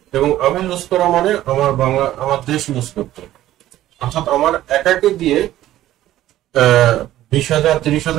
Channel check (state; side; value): quieter; left; 13.9 dB